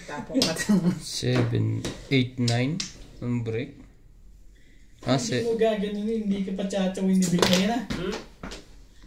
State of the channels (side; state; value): both; identical; correlation 1.00